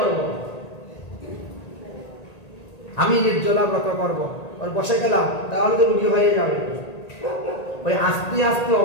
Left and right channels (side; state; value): right; late; 1.9 ms